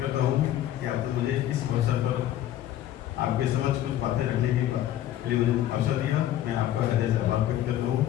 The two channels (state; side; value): quieter; right; 12.5 dB